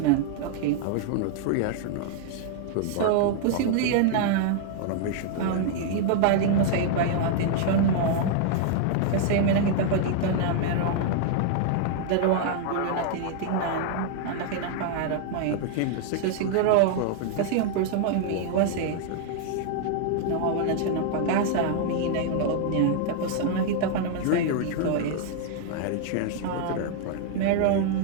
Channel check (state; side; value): different; both; correlation 0.00